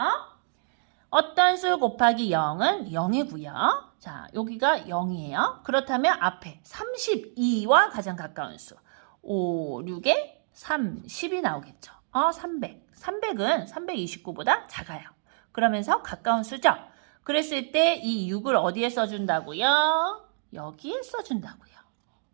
어떤 수 곱하기 0은 0이고요. 자, 여기가 0이에요. 그렇다면 앞에 32와 가장 가까운 수. 5, 6에 30이 나오겠죠. 300. 300은 329보다 작아요. 그러면서 가까운 수죠. 그랬을 때 이 6을 어디에 써준다고요? 여기에 써준다고요.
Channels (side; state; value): left; silent; digital silence